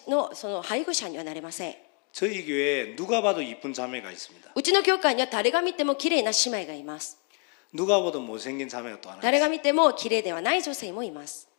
のその配偶者にはなれません。 저희 교회에 누가 봐도 이쁜 자매가 있습니다. うちの教会には誰が見ても綺麗な姉妹がいます。 누가 봐도 못생긴 자매가 또 하나 誰が 있어요. 見ても綺麗ではない女性もいます。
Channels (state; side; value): quieter; right; 39.2 dB